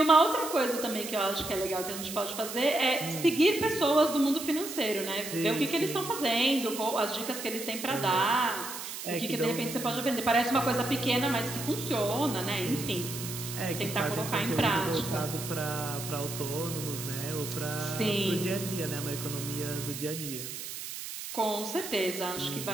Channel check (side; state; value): right; noise; hiss, 8 dB below the sound